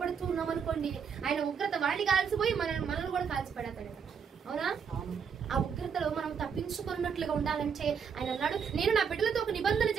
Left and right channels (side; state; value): left; quieter; 6.8 dB